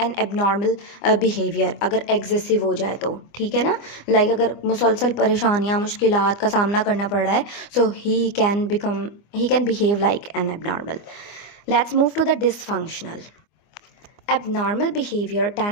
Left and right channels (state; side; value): late; right; 24 ms